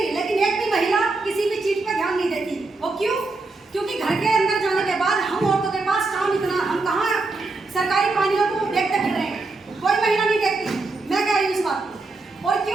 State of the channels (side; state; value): left; quieter; 3.5 dB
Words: लेकिन एक भी महिला किसी भी चीज़ पर ध्यान नहीं देती। वो क्यों? क्योंकि घर के अंदर जाने के बाद हम औरतों के पास काम इतना, हम कहाँ सरकारी पानियों को देखते फिर रहे हैं, कोई महिला नहीं देखती। मैं कह रही हूँ इस बात को। और